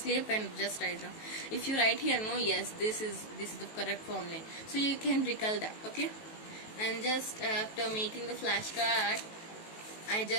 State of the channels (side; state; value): right; late; 18 ms